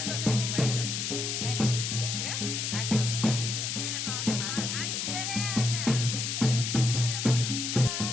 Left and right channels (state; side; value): noise; left; hiss, 2 dB below the sound